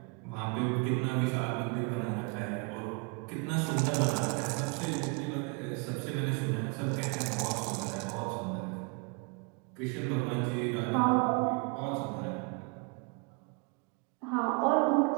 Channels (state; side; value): quieter; left; 33.2 dB